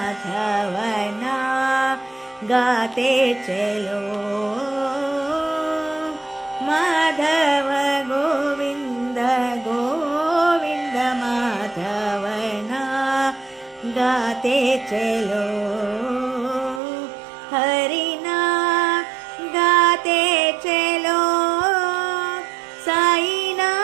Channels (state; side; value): drops out; left; at 16.8 s